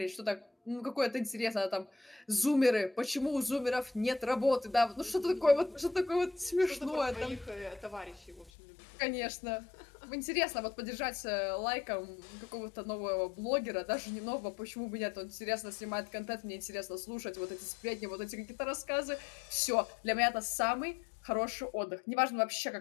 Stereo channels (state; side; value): drops out; right; at 8.5 s